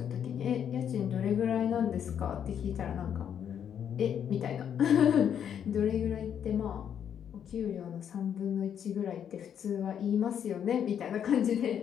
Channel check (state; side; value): quieter; right; 8.7 dB